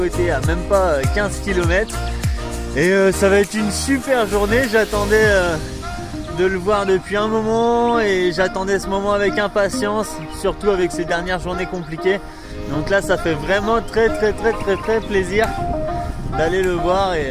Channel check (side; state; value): both; identical; correlation 1.00